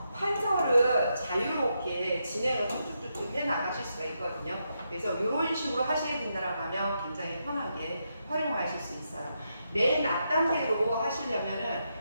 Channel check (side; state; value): both; inverted; correlation -0.83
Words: 판서를 자유롭게 진행을 툭툭툭 해 나가실 수가 있거든요. 그래서 이런 식으로 하시게 된다라고 하면 굉장히 편하게 활용하실 수 있어요. 맨 앞단계로 하시려면은